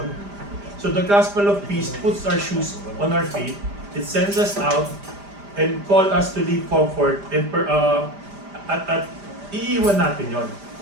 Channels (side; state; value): left; late; 5.0 ms